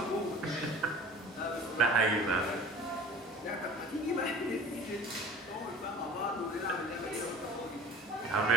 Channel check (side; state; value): both; normal; correlation 0.43